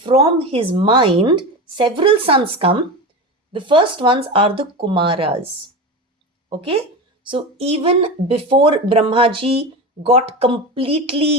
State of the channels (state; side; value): normal; both; correlation 0.24